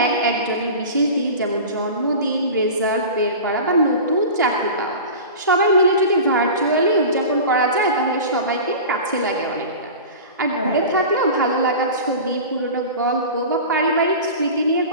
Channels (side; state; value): both; inverted; correlation -0.33